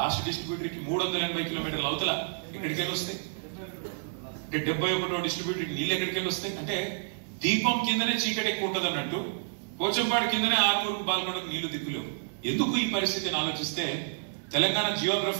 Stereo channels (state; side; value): silent; left; digital silence